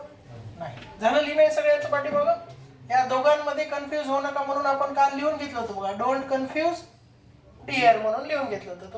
नाही. झालं लिहिणं सगळ्याचं पाठीमागं. या दोघांमध्ये कन्फ्यूज होऊ नका म्हणून आपण काल लिहून घेतलं होतं बघा, डोंट कन्फ्यूज डिअर म्हणून लिहून घेतलं होतं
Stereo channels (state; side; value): identical; both; correlation 1.00